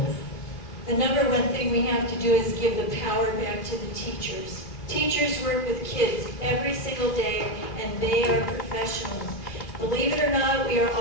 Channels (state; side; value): late; right; 2.5 ms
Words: The number one thing we have to do is give the power back to the teachers. Teachers work with kids every single day, and they are professionals. Believe it or not, we are